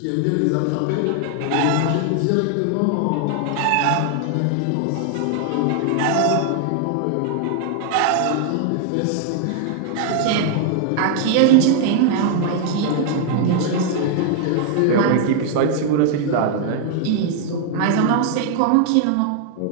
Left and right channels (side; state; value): both; different; correlation 0.00